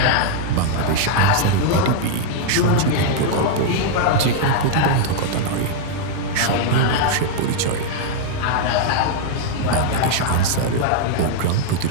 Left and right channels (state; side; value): different; both; correlation 0.00